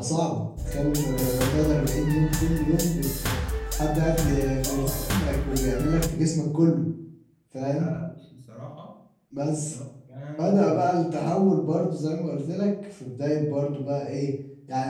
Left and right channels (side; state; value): both; identical; correlation 1.00